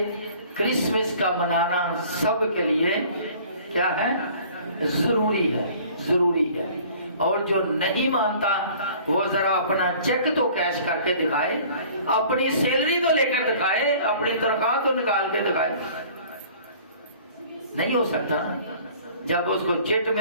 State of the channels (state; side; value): inverted; both; correlation -0.50